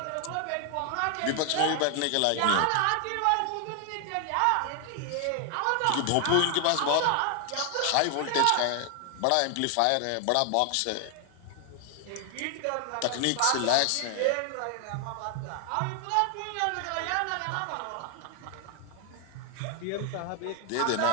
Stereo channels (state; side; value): different; both; correlation 0.00